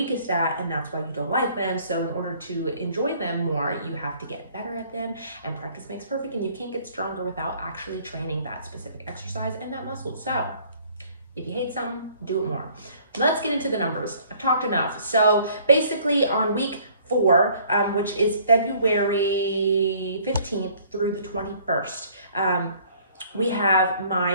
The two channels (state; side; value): inverted; both; correlation -0.57